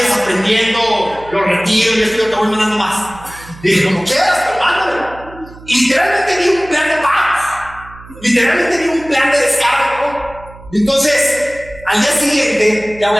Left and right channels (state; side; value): noise; right; hum, 19 dB below the sound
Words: aprendiendo, lo retiro y esto, yo te voy mandando más. Dije, como quieras, pero mándamelo. Y literalmente vi un plan de paz. Literalmente vi un plan de descarga. Entonces, al día siguiente, ya voy